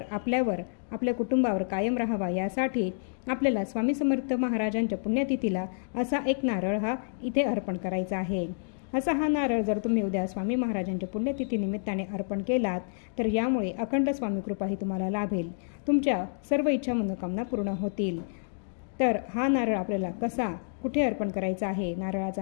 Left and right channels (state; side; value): silent; right; digital silence